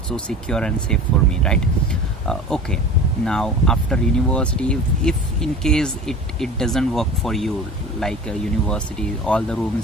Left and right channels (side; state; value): both; normal; correlation 0.38